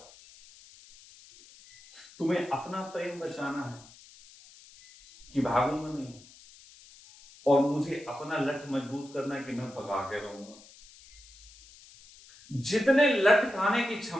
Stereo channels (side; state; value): left; noise; hiss, 22 dB below the sound